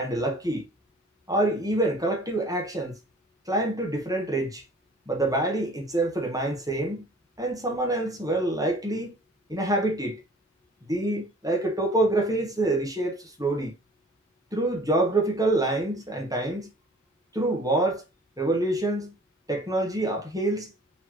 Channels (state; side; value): normal; both; correlation 0.49